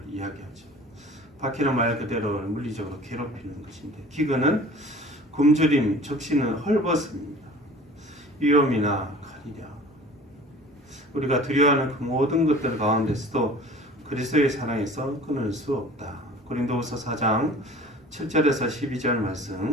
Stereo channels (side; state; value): both; normal; correlation 0.45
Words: 이야기하죠. 박해는 말 그대로 물리적으로 괴롭히는 것인데 기근은 굶주림, 적신은 헐벗음입니다. 위험이나 칼이랴. 우리가 두려워하는 그 모든 것들 가운데서도 그리스도의 사랑에서 끊을 수 없다. 고린도후서 4장 7절에서 12절